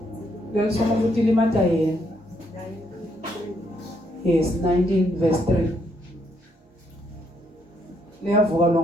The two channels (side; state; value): both; normal; correlation 0.73